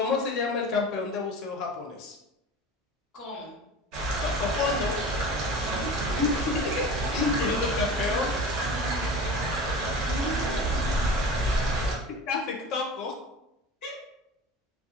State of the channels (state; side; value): normal; both; correlation 0.35